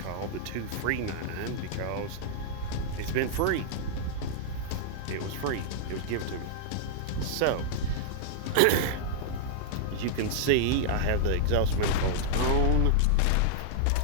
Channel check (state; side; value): different; both; correlation -0.01